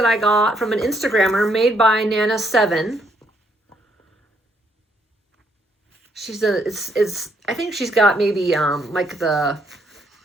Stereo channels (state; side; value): normal; both; correlation 0.72